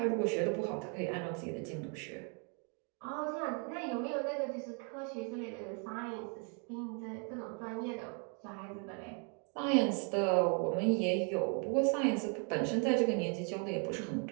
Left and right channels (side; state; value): left; quieter; 38.7 dB